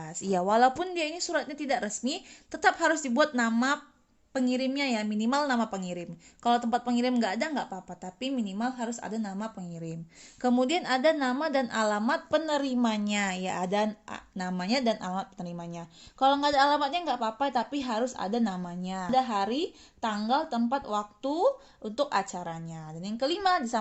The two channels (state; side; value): identical; both; correlation 1.00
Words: Iya, walaupun dia ini suratnya tidak resmi, tetap harus dibuat nama pengirimnya ya, minimal nama pengirim. Kalau tempat pengirim nggak ada nggak apa-apa, tapi minimal harus ada nama pengirim. Kemudian ada nama dan alamat penerimanya, ya ada namanya dan alamat penerimanya. Kalau nggak ada alamatnya nggak apa-apa, tapi harus ada namanya. Ada hari, tanggal, tempat, waktu untuk acaranya. Dan yang kelima